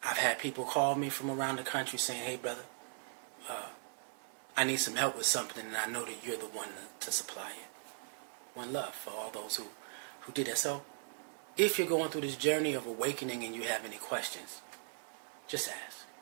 I've had people call me from around the country saying, hey, brother, I need some help with something, and I know that you're the one to supply it. One love for all those who did that. So if you're going through this journey of awakening and you have any questions, just ask.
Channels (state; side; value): silent; left; digital silence